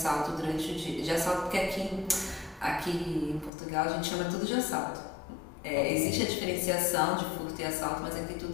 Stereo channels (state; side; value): drops out; right; at 3.5 s